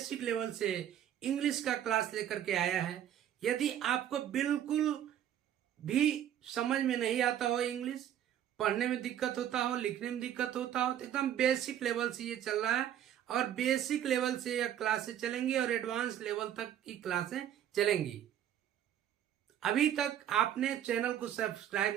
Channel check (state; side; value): quieter; left; 10.7 dB